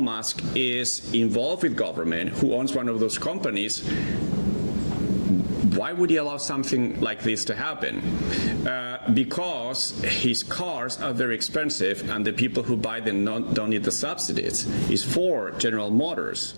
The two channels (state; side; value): inverted; both; correlation -1.00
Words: Musk is involved with government, who owns one of those companies, why would he allow something like this to happen? Because his cars are very expensive and the people who buy them don't need the subsidies. It's for General Motors,